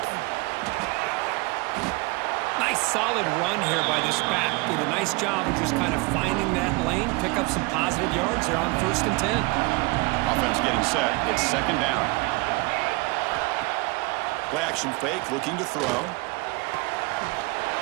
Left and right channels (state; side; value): quieter; left; 26.5 dB